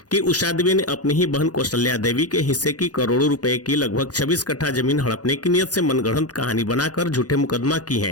कि उषा देवी ने अपनी ही बहन कौशल्या देवी के हिस्से की करोड़ों रुपए की लगभग 26 कट्ठा जमीन हड़पने की नियत से मनगढ़ंत कहानी बनाकर झूठे मुकदमा की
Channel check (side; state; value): right; late; 0.68 ms